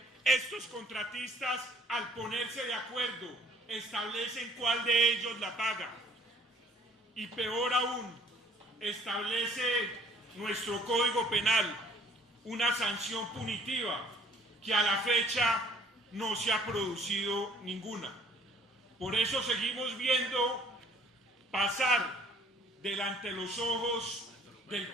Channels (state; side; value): normal; both; correlation 0.57